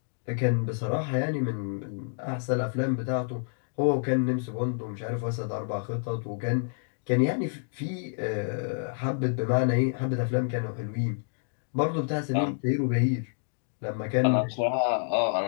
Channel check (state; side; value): silent; right; digital silence